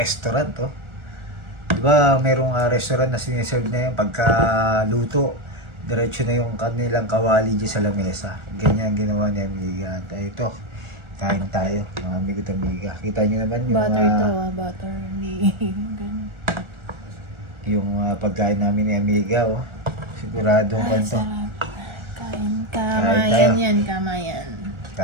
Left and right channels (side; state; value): left; late; 1.4 ms